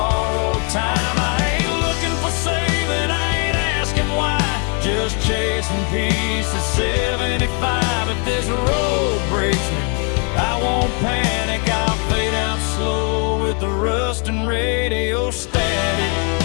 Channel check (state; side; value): quieter; right; 37.7 dB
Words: time. I ain't looking for saving, I ain't asking why. Just chasing peace at 75. If this road breaks me, I won't panic, I'll fade out slow with the rust and radio static.